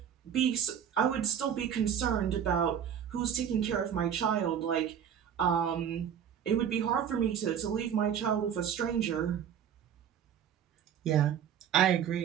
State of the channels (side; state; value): left; quieter; 8.7 dB